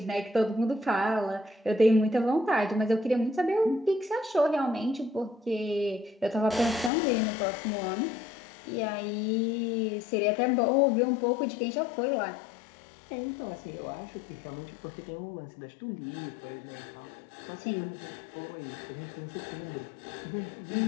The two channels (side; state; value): right; drops out; at 6.9 s